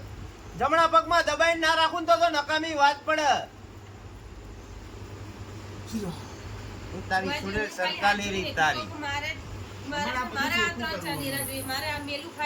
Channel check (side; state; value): both; identical; correlation 1.00